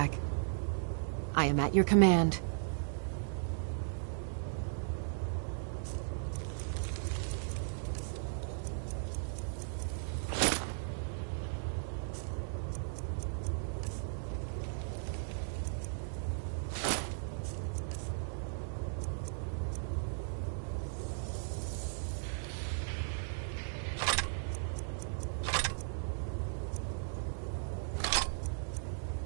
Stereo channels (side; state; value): left; silent; digital silence